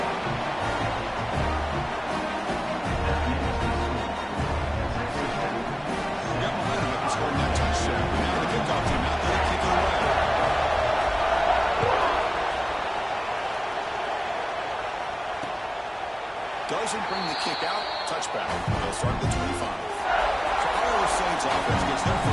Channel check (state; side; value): identical; both; correlation 1.00